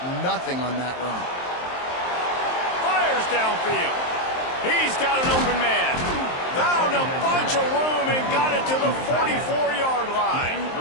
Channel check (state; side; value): late; right; 23 ms